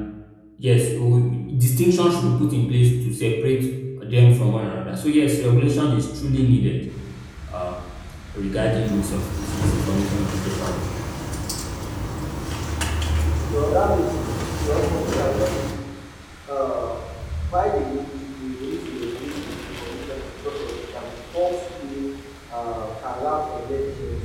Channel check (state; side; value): identical; both; correlation 1.00